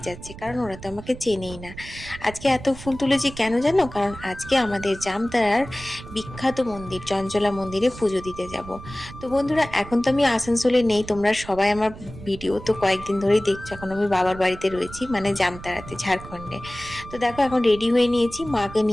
যাচ্ছে, কারণ ওরা তো আমাকে চেনেই না। আজকে এত ফুল তুলেছি কেন জানো? কারণ আজকে আমাদের জামতারার বিখ্যাত মন্দির চঞ্চলা মন্দিরে পুজো দিতে যাব। তো বন্ধুরা, এখন তো আমি আসানসোলে নেই, তোমরা সবাই আমার ভিডিও তো কয়েকদিন ধরেই দেখছো। এখন আমি বাবার বাড়িতে রয়েছি, মানে জামতারাতে, ঝাড়খণ্ডে। তো দেখো, এখন রেডি হয়ে নিয়েছি, মাকে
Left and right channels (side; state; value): right; noise; rumble, 15 dB below the sound